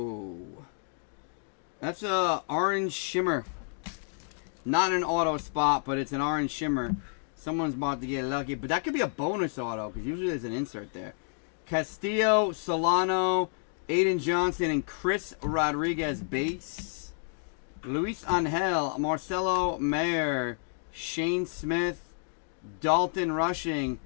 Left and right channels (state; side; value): silent; right; 58 dB below the other